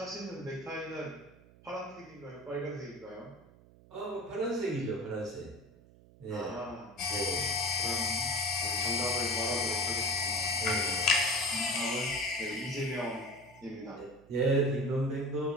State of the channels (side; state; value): right; noise; hum, 24 dB below the sound